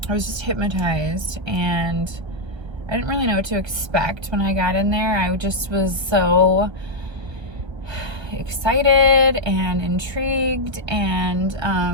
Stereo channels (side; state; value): left; late; 1.3 ms